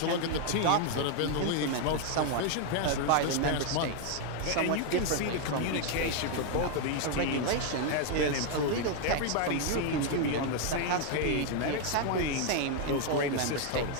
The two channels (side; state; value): both; different; correlation 0.00